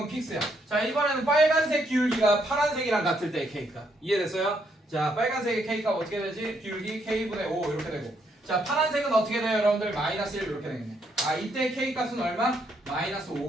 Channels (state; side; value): normal; both; correlation 0.74